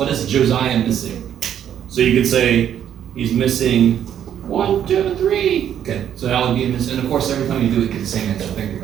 is Josiah missing? So you could say he's missing 1, 2, 3. Okay, so that would be missing. And of course, every time you do it, you get the same answer. Think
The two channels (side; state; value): left; quieter; 9.8 dB